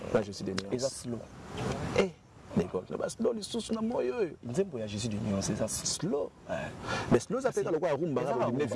je suis de nuance eza slow d'accord le bas slow lisusu na moyo nzembo ya Jésus de nuance eza slow mais slow ça fait ka lokwa rumba ka limiter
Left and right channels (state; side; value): identical; both; correlation 1.00